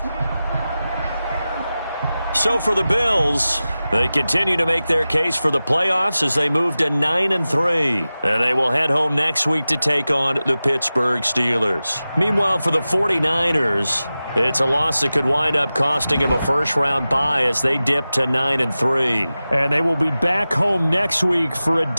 So for the Bills, they continue to make their case for the playoffs as they move to 9-3. And they will head home next week to take on the Pittsburgh Steelers. Meanwhile, for the 49ers, it's a loss that could wind up costing them a first-round bye as they dip to 9-3. And they will be back home next week for a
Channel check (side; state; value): both; inverted; correlation -0.95